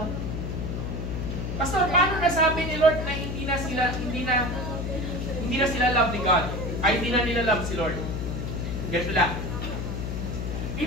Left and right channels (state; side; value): noise; left; hum, 3 dB below the sound